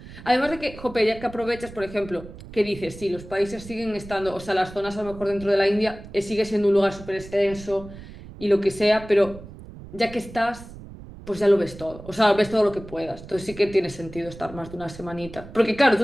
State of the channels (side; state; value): right; noise; rumble, 16 dB below the sound